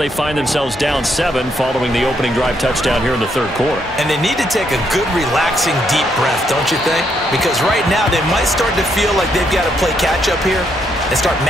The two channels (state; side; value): normal; both; correlation 0.75